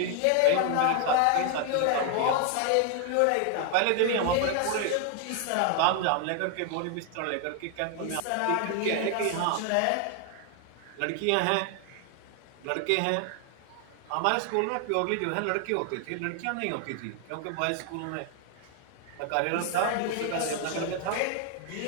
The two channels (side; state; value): both; different; correlation 0.00